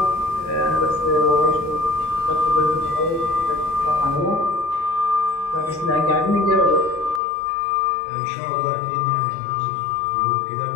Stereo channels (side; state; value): right; drops out; at 7.2 s